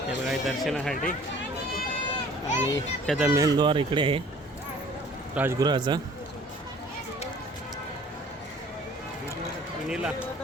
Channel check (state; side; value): normal; both; correlation 0.52